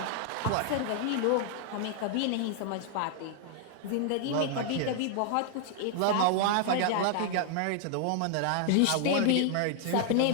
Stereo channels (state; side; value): different; both; correlation 0.00